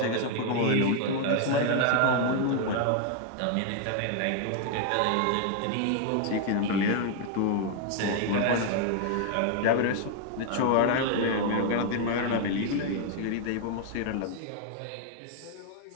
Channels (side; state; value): both; different; correlation 0.00